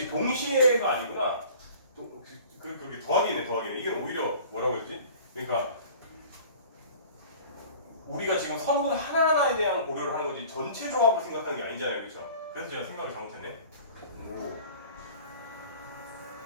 동시에가 아니구나 그게 더하기네 이게 오히려 뭐라고 했지? 그러니까 우리가 지금 선분 하나하나에 대한 고려를 하는 거지 전체 조합을 생각하는 게 아니잖아요 그렇죠? 그래서 제가 생각을 잘못했네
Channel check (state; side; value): inverted; both; correlation -0.46